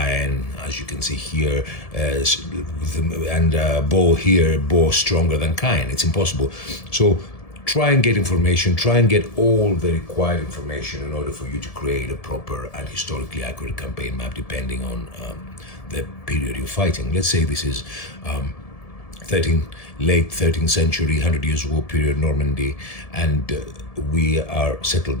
as you can see here, and Bow stronger than Caen. It's impossible. So try and get information, try and get all the required information in order for you to create a proper and historically accurate campaign map, depending on the period you're fighting. Let's say this is late 13th century, 100 Years' War period, Normandy, and we are settled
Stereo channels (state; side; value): late; right; 1.7 ms